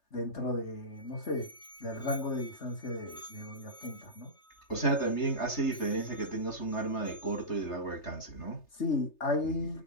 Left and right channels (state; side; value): late; right; 3.3 ms